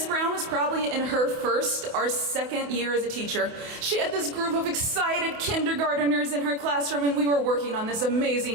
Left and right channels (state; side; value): late; left; 28 ms